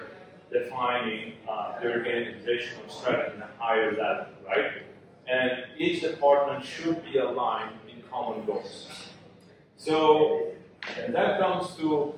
defining the organizational strategy in a higher level, right? And each department should be aligned in common goals. So, and that comes to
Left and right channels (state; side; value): identical; both; correlation 1.00